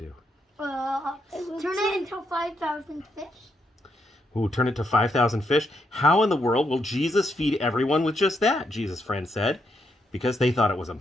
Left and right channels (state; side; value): normal; both; correlation 0.78